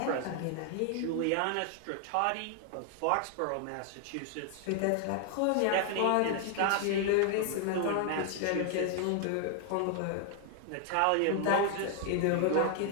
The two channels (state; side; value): different; both; correlation 0.00